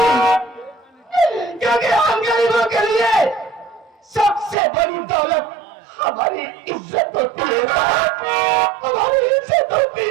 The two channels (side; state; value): left; drops out; at 4.5 s